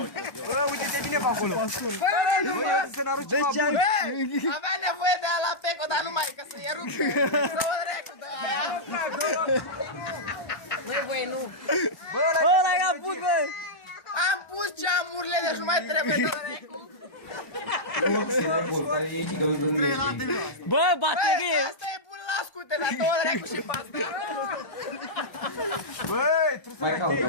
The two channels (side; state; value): right; late; 1.3 ms